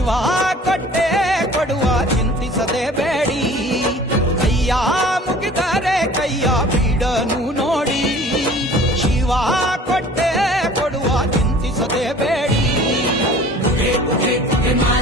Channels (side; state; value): both; normal; correlation 0.47